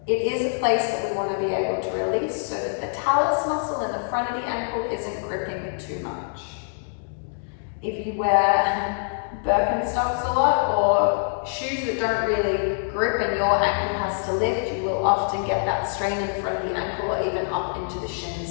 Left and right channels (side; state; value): right; silent; digital silence